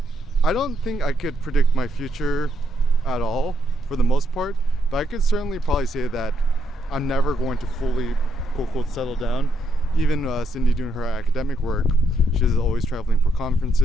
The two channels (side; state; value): both; normal; correlation 0.77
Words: I don't think I could predict my future at all for the most part, but I could certainly probably say that I'm never going to fully, quote, unquote, settle down. Even Cindy doing her academic work, she's always traveling for